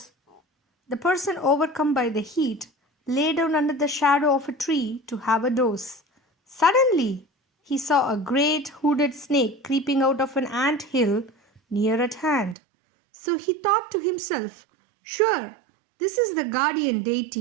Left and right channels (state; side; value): drops out; left; at 12.6 s